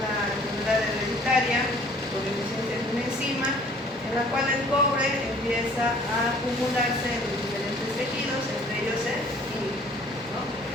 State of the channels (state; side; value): normal; both; correlation 0.54